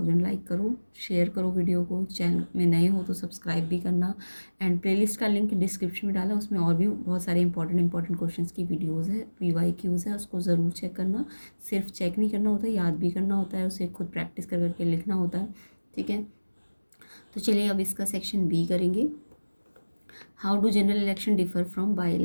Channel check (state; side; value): inverted; both; correlation -1.00